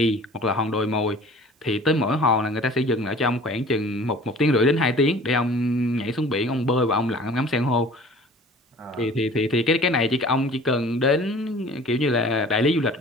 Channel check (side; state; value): both; normal; correlation 0.47